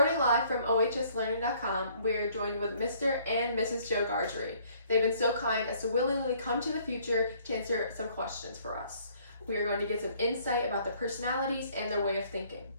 live from ohslearning.com, we're joined with Mr. and Mrs. Joe Gargery. They've been so kind as to willingly come to the future to answer some questions for us. We are going to get some insight about their personalities and their way of thinking.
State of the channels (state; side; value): inverted; both; correlation -0.61